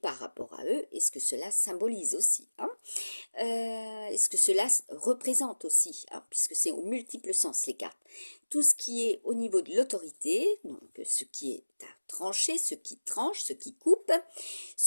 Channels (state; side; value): inverted; both; correlation -1.00